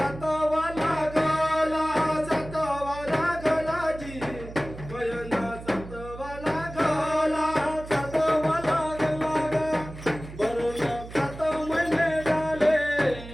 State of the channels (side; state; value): right; noise; hum, 14 dB below the sound